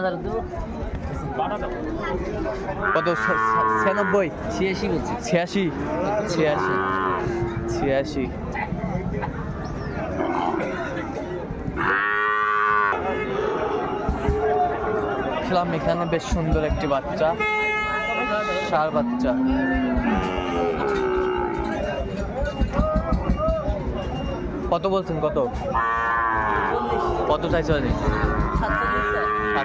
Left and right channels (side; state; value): both; identical; correlation 1.00